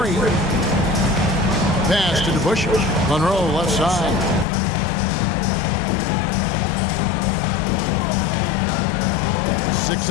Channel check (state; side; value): drops out; right; at 4.5 s